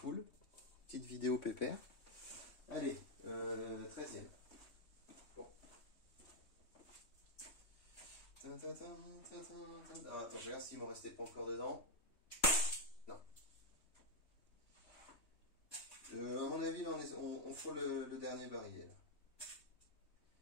Petite vidéo pépère. Allez, 13e. Bon. Ah, attends, je regarde s'il m'en restait pas encore dedans. Non. À mon avis, on frôle le dernier barillet. Là.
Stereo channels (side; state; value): right; late; 3.2 ms